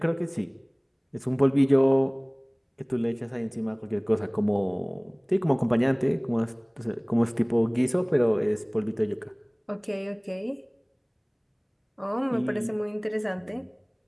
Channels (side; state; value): both; identical; correlation 1.00